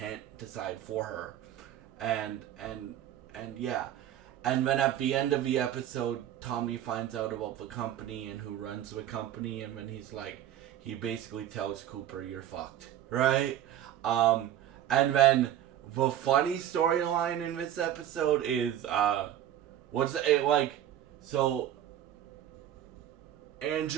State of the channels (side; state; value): left; quieter; 11.4 dB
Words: decide for her. And yeah. And then at the end of the episode, Tommy finds out about the company and who runs the company, and then he's like, he basically tells Cooper, "You're fucked," right? And then the funny storyline in this episode is what's it like? So